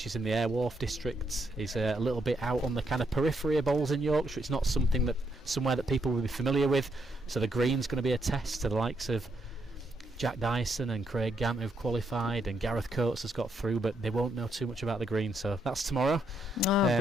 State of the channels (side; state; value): both; normal; correlation 0.77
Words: is in the Airwharf district, is a little bit out on the kind of periphery of bowls in Yorkshire. It's not somewhere that people will be familiar with, so the green's going to be a test to the likes of Jack Dyson and Craig Gant, who've qualified, and Gareth Coates has got through, but they won't know too much about the green. So that's tomorrow.